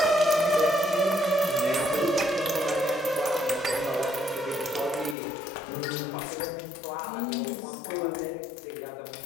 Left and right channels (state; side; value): drops out; right; at 5.2 s